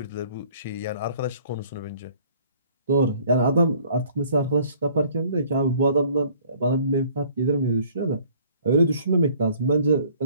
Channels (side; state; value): both; inverted; correlation -0.56